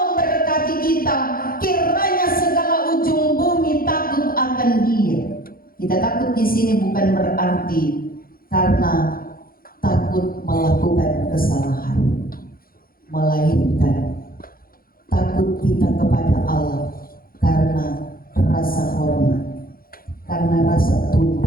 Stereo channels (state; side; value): late; right; 0.42 ms